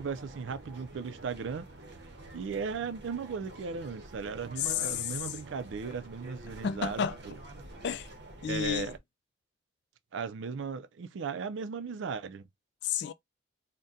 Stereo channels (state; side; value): normal; both; correlation 0.08